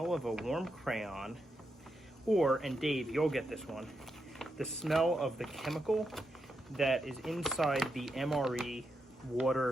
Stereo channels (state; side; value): normal; both; correlation 0.84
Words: of a warm crayon or, and Dave, you'll get this one, the smell of the chemical that is inside the MRE